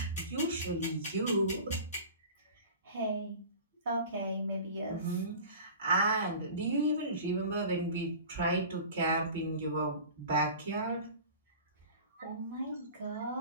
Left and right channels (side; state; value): both; inverted; correlation -0.39